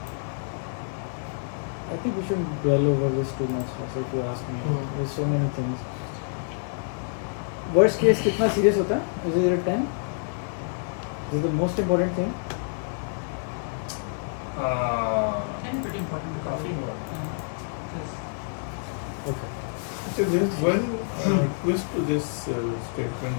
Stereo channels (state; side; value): silent; right; digital silence